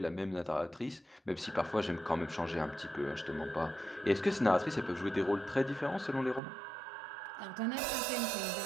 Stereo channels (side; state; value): left; drops out; at 6.4 s